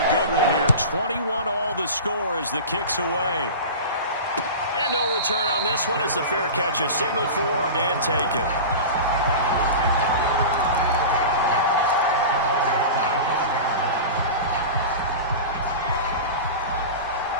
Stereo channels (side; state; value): both; inverted; correlation -0.30